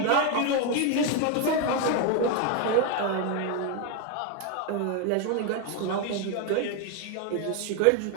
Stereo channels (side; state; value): both; different; correlation 0.02